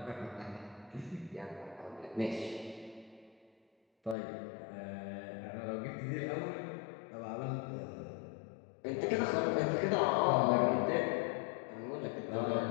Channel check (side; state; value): right; drops out; at 4.2 s